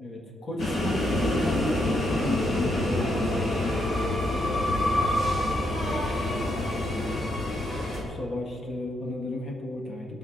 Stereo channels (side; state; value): both; normal; correlation 0.78